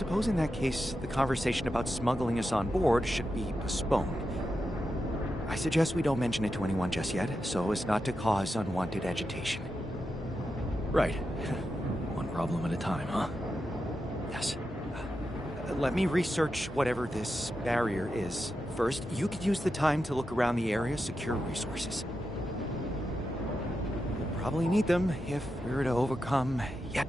in that case, the conversation about smuggling us on board should be postponed. I suggest we don't mention it to anyone just yet, so as not to cause unwanted agitation. Right. One problem at a time, huh? Yes. Let me research whatever this barrier is. First, you could use the time to look around the area, secure resources. We'll probably need them if we're to overcome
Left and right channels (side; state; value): both; normal; correlation 0.88